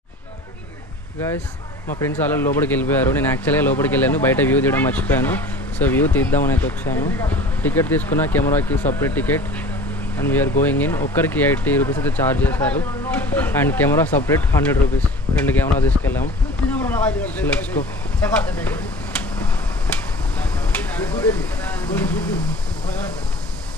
Guys, మా friends అలా లోపలికి వెళ్ళిపోయారు. నేను యాక్చువల్గా లోపలికి వెళ్ళాను, బయట వ్యూ తీయడం మర్చిపోయాను. సో వ్యూ తీద్దామని అయితే వచ్చాను. టికెట్ తీసుకున్న, కెమెరాకి separate ticket and we're going in. ఒక్కరికి 80 రూపీస్ అయితే ఛార్జ్ చేశారు and camera separate 100 rupees. 2 camera తీసుకెళ్ళాము. Let's go.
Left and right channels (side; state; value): both; normal; correlation 0.42